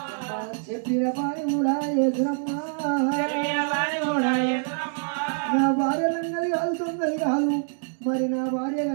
చెప్పిన పని కూడా యేసురమ్మా నా భార్య లంగది కాదు తొందరి కాదు మరి నా భార్య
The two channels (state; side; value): silent; left; 61 dB below the other